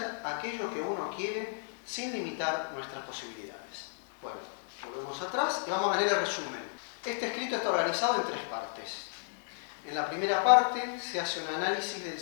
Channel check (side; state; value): right; silent; digital silence